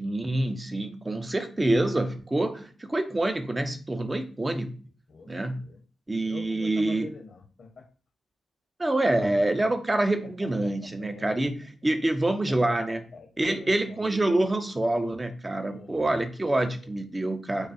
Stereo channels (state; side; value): normal; both; correlation 0.96